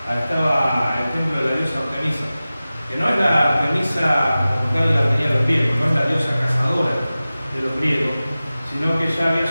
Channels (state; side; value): inverted; both; correlation -0.96